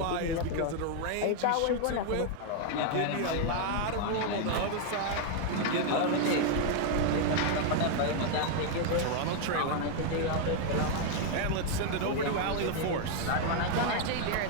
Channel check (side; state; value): both; different; correlation 0.00